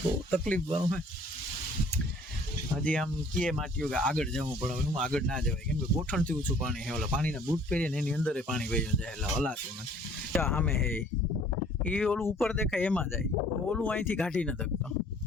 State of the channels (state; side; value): normal; both; correlation 0.55